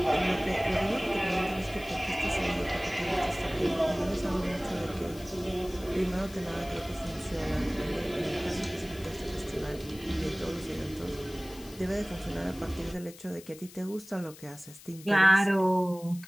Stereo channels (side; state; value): left; noise; hiss, 19 dB below the sound